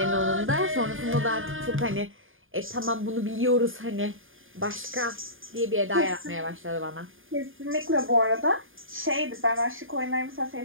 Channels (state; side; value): late; left; 0.59 ms